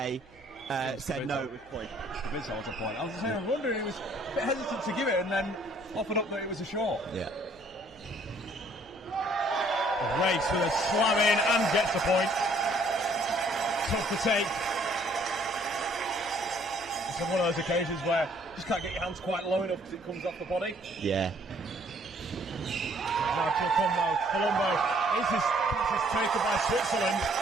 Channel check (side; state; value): right; noise; hum, 29 dB below the sound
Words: said no, it was point. It's a point. I was wondering, he was a bit hesitant to give it and then offered up that it was a short. Yeah. Race with a slam in and gets the point. Tough to take. It's one of those occasions where you just can't get your hands quite low enough because it comes off the body. Yeah. Now Colombo. This is taken by Switzerland.